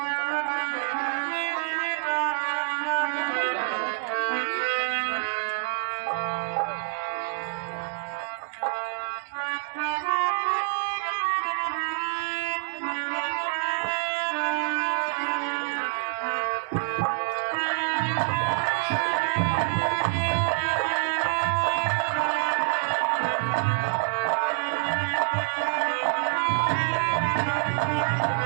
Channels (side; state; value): left; silent; 60 dB below the other